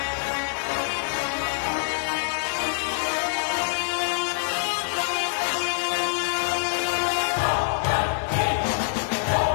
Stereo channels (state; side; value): silent; right; digital silence